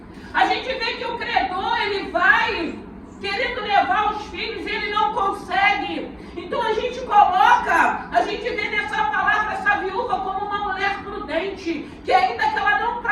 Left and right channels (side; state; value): both; identical; correlation 1.00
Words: A gente vê que o credor, ele vai querendo levar os filhos e ele não consegue. Então a gente coloca, a gente vê nessa palavra essa viúva como uma mulher prudente, que ainda que ela não